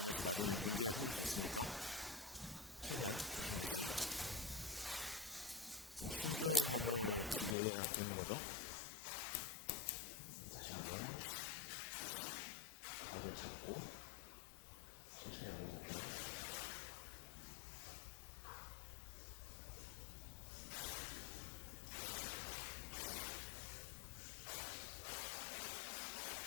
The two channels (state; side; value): drops out; right; at 7.6 s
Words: 나중에 문제가 생길 수 있으니까 최대한 조심조심 신중함을 기해야 되는 거죠. 다시 한번 각을 잡고 천천히 올려볼게요.